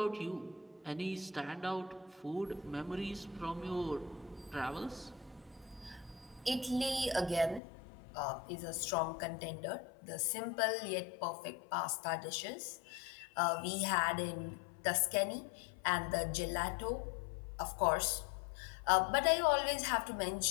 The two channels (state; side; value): drops out; right; at 7.6 s